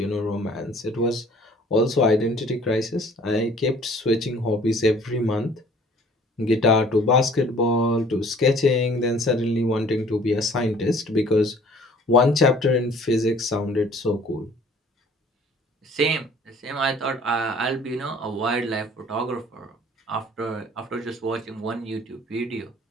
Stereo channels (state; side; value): normal; both; correlation 0.53